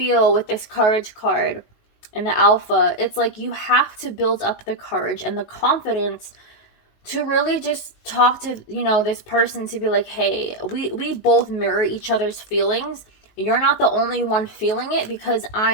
with this courage card and the Alpha, it's like you have to build up the courage and the confidence to really just talk to, you know, this person, to be like, hey, we both mirror each other's feelings. You're not the only one feeling it, because I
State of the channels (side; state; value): right; late; 19 ms